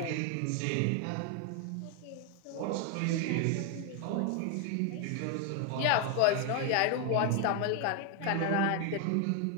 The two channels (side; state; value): both; different; correlation 0.01